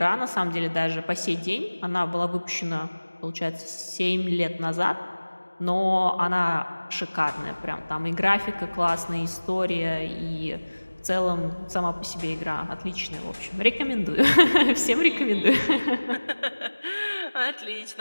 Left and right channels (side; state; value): both; inverted; correlation -1.00